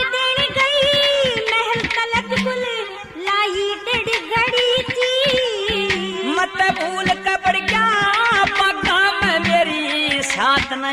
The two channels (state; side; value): identical; both; correlation 1.00